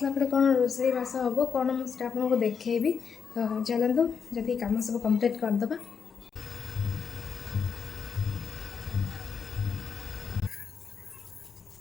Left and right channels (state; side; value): quieter; right; 6.4 dB